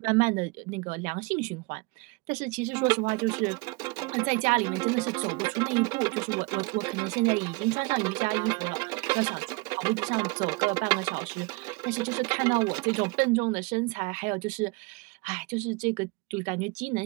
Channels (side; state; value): left; quieter; 26.7 dB